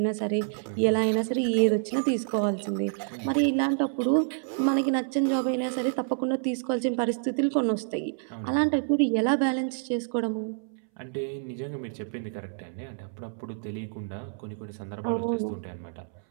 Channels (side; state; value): left; silent; 59 dB below the other